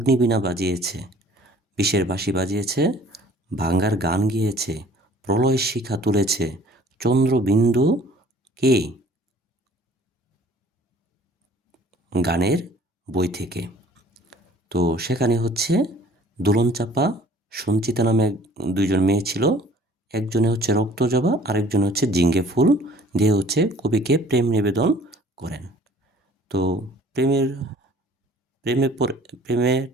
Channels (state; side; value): normal; both; correlation 0.52